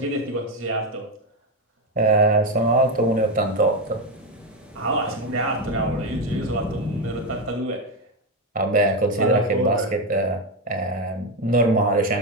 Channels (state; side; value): normal; both; correlation 0.09